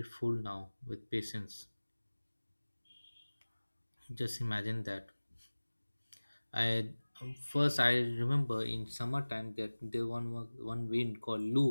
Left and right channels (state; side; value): inverted; both; correlation -1.00